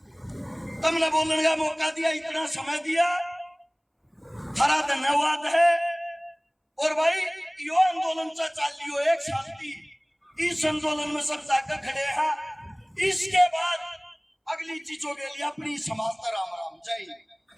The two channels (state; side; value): identical; both; correlation 1.00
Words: तुमने बोलने का मौका दिया, इतना समय दिया, थारा धन्यवाद है। और भाई यो आंदोलन से चल लियो 1 साल की, इस आंदोलन में सब जाकर खड़े हैं। इसके बाद अगली चीजों के लिए अपनी समाज राम राम। जय हिंद।